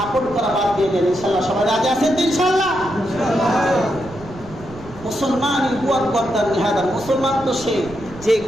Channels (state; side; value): noise; right; rumble, 17 dB below the sound